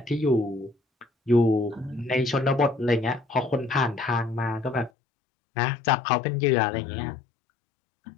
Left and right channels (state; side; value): drops out; right; at 4.9 s